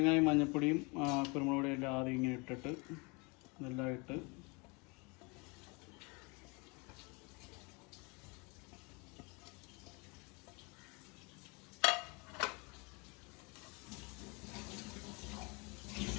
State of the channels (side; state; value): right; quieter; 29.5 dB